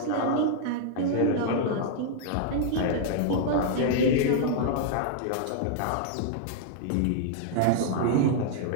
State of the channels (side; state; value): both; different; correlation -0.01